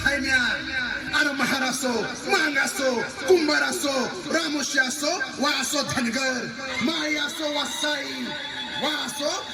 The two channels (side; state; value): both; identical; correlation 1.00